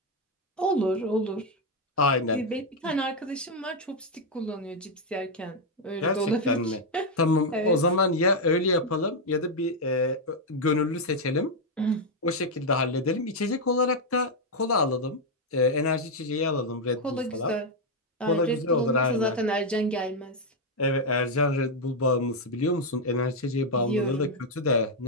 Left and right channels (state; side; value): normal; both; correlation 0.02